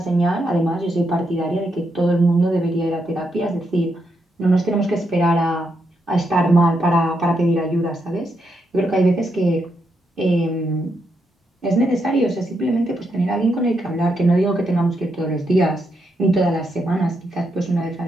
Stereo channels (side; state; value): both; normal; correlation 0.81